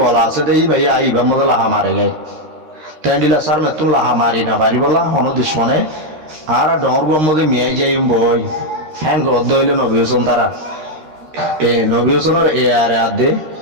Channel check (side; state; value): left; late; 13 ms